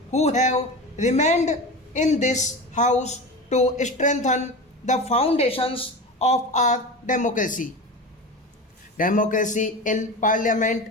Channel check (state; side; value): normal; both; correlation 0.28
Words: who have remained in this House to strengthen the foundations of our democracy. Democracy in